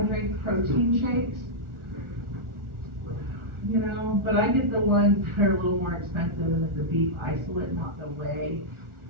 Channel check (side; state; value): left; late; 1.4 ms